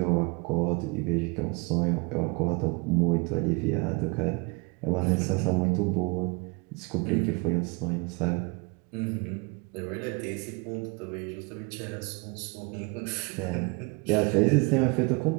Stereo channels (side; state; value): left; quieter; 29.3 dB